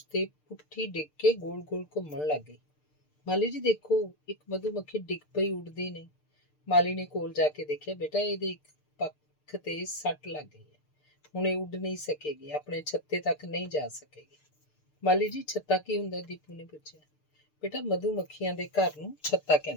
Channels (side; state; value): right; late; 6.7 ms